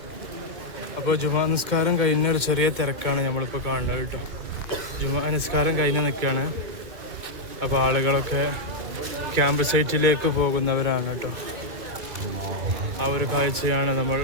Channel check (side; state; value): left; late; 2.3 ms